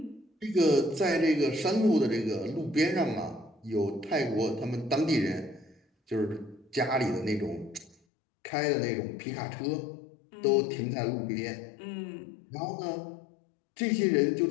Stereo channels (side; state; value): right; drops out; at 8.0 s